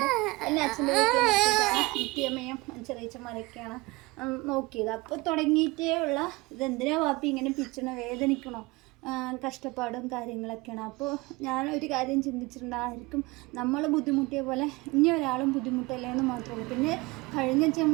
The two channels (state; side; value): quieter; left; 23.0 dB